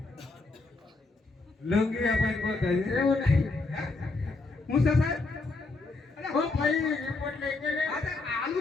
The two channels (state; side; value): quieter; right; 3.5 dB